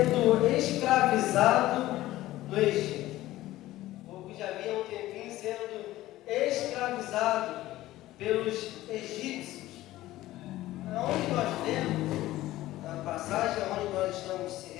escravizado no Egito. O povo que já havia um tempinho sendo escravizado pelos egípcios. Aonde nós lemos, na passagem onde nós estamos se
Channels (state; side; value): quieter; right; 15.9 dB